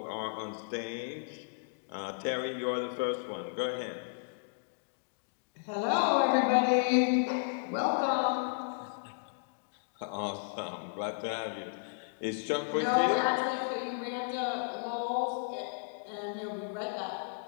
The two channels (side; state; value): right; silent; digital silence